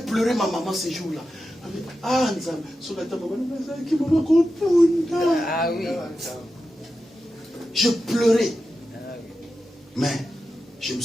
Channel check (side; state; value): both; normal; correlation 0.91